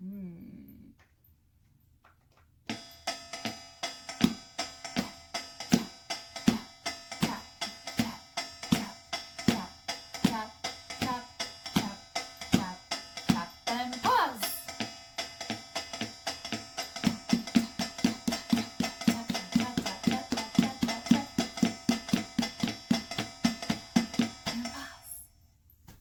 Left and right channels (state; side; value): identical; both; correlation 1.00